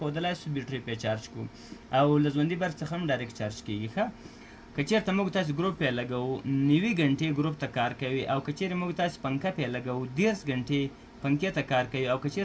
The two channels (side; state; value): both; identical; correlation 1.00